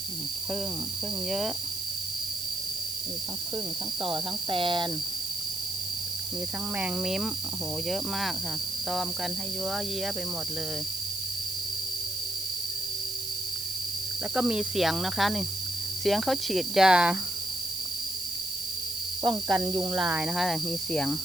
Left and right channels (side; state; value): right; noise; hiss, 5 dB below the sound